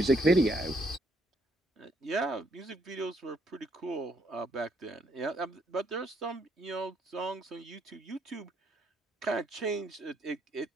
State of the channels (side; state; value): both; normal; correlation 0.72